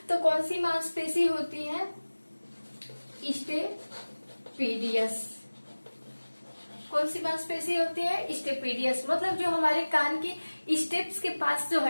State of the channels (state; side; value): inverted; both; correlation -1.00